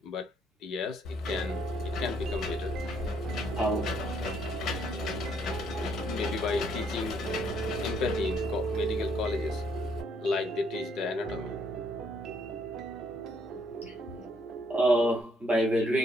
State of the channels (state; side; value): normal; both; correlation 0.69